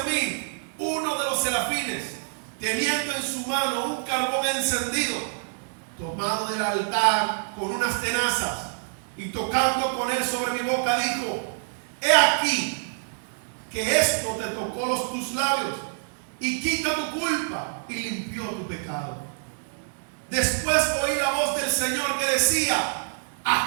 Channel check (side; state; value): left; silent; digital silence